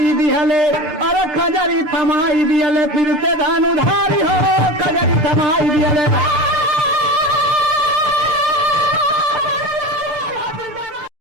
दिहले, अरे खजरी थमाई दिहले फिर से धनुधारी हो, खजरी थमाई दिया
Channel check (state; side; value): late; left; 6.9 ms